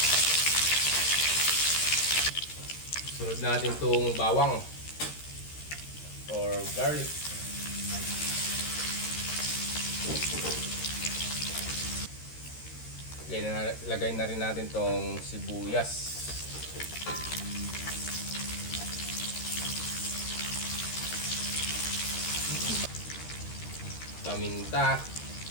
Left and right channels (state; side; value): late; right; 13 ms